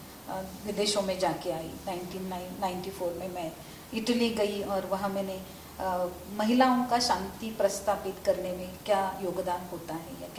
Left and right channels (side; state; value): both; identical; correlation 1.00